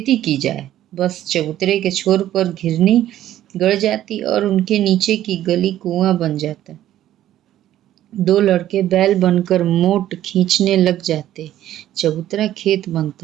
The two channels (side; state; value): left; quieter; 12.7 dB